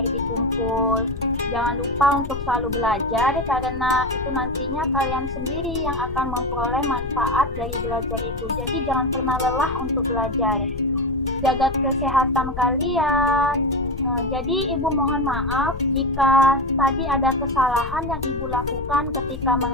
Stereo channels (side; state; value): left; noise; rumble, 9 dB below the sound